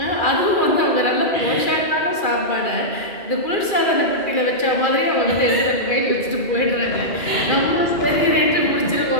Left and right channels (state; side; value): late; right; 2.4 ms